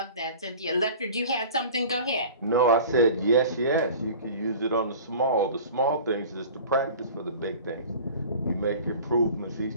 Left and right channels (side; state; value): both; inverted; correlation -0.41